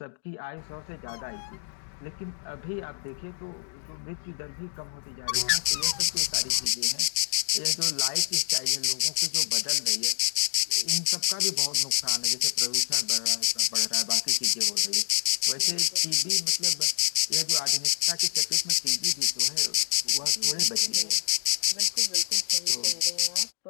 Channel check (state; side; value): silent; right; digital silence